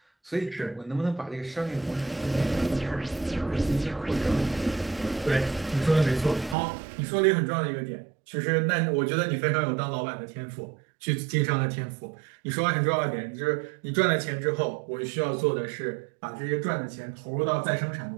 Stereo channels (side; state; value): left; drops out; at 6.6 s